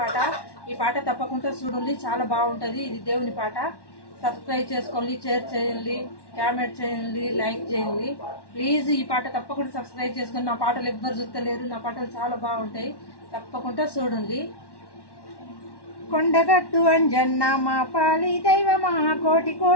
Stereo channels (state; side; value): late; right; 1.1 ms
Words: ఈ పాట తప్పకుండా చూడండి, చాలా బాగుంటుంది. ఇది దేవుని పాట. సబ్స్క్రైబ్ చేసుకోండి, షేర్ చేయండి, కామెంట్ చేయండి, లైక్ చేయండి. ప్లీజ్ ఈ పాట తప్పకుండా సబ్స్క్రైబ్ చేసుకొని. నా పాటలు ఎవ్వరు చూస్తలేరు, నా పాటలు చాలా బాగుంటాయి, తప్పకుండా చూడండి. కొండగట్టు అంజన్న మా పాలి దైవమా, కోటి